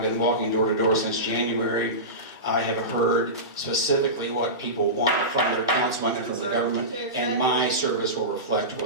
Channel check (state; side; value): normal; both; correlation -0.20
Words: been walking door to door since January, I have heard specifically what people want from their councilman and from the government, and my service will reflect